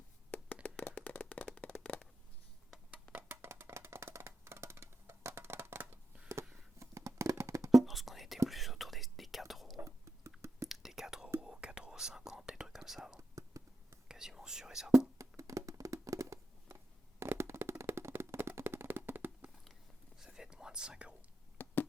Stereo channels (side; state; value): both; normal; correlation 0.87